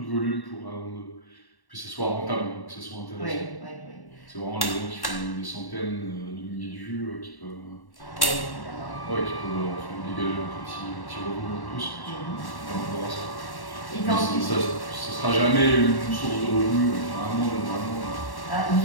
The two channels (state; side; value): late; right; 1.1 ms